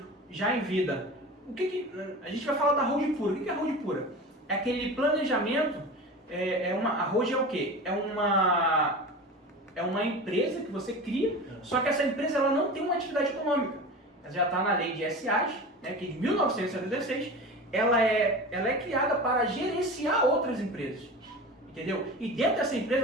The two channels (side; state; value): both; normal; correlation 0.32